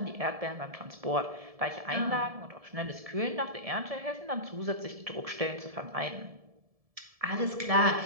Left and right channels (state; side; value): late; left; 1.7 ms